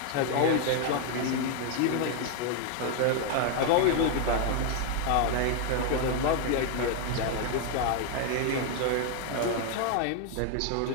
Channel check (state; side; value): different; both; correlation 0.00